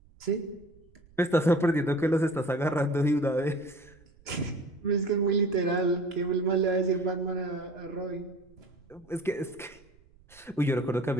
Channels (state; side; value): noise; right; rumble, 28 dB below the sound